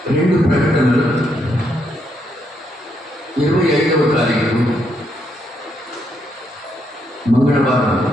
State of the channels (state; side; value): normal; both; correlation 0.77